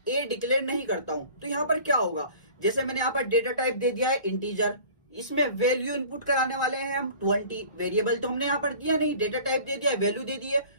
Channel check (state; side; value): inverted; both; correlation -0.45